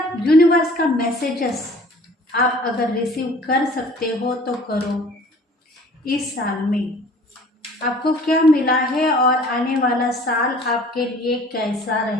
यूनिवर्स का मैसेजेस आप अगर रिसीव कर सकते हो तो करो। इस साल में आपको क्या मिला है और आने वाला साल आपके लिए कैसा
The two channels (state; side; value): normal; both; correlation 0.50